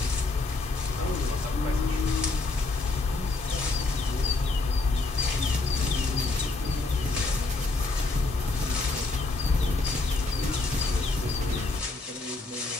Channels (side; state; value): right; quieter; 3.4 dB